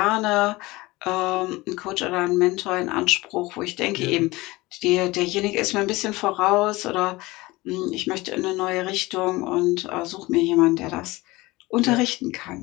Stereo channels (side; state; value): right; quieter; 20.9 dB